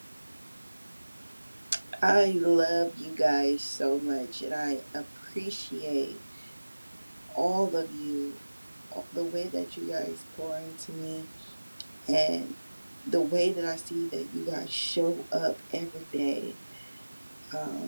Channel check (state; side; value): inverted; both; correlation -1.00